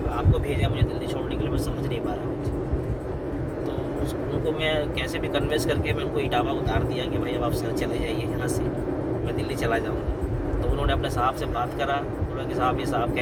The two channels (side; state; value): both; identical; correlation 1.00